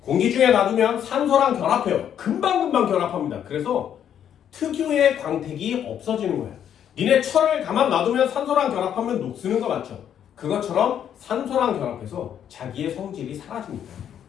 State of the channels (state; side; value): quieter; right; 9.4 dB